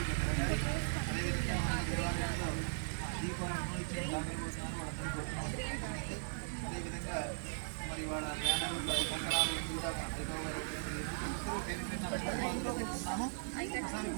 అదేవిధంగా మన దేవాలయంలో దీపాలను ఇచ్చిన దానికోసారి వాళ్ళందరూ కోరుతున్నాము. అదేవిధంగా మరి వాళ్ళ జ్ఞానాలు కంకణాలు కూడా ఉన్నాము. ఒకసారి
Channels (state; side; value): silent; left; 52 dB below the other